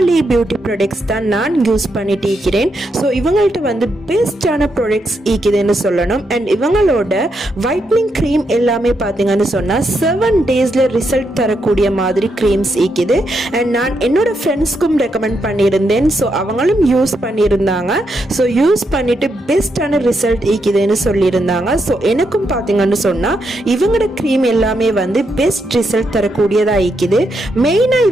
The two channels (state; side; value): normal; both; correlation 0.81